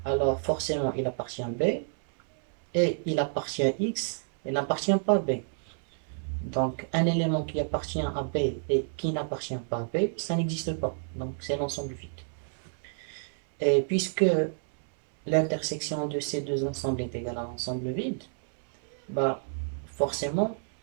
alors forcément il appartient à B, et il appartient à X, et n'appartient pas à B. Donc un élément qui appartient à B et qui n'appartient pas à B, ça n'existe pas. Donc c'est l'ensemble vide. Et puisque l'intersection de ces deux ensembles est égale à l'ensemble vide, bah forcément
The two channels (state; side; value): silent; left; 58 dB below the other